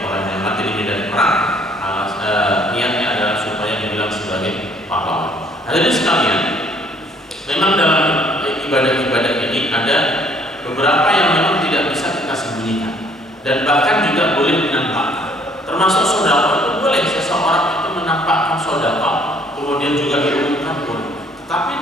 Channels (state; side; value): normal; both; correlation 0.61